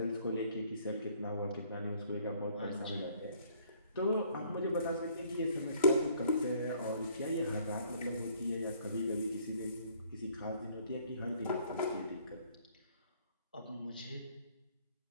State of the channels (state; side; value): inverted; both; correlation -0.61